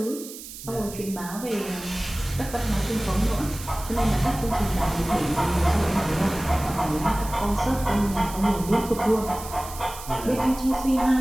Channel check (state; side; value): noise; right; hiss, 13 dB below the sound